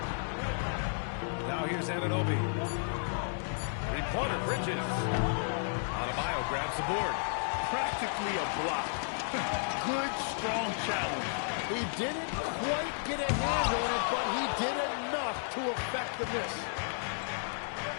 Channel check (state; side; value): silent; right; digital silence